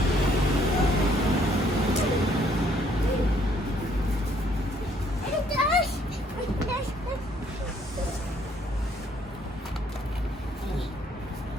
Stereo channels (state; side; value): normal; both; correlation 0.65